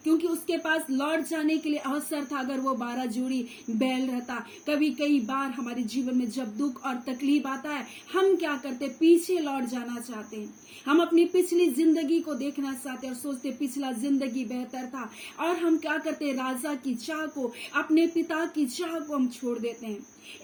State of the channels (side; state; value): both; identical; correlation 1.00